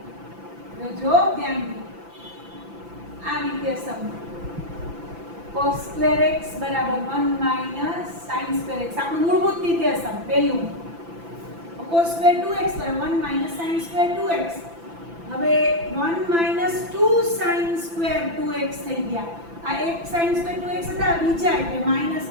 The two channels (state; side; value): late; left; 5.9 ms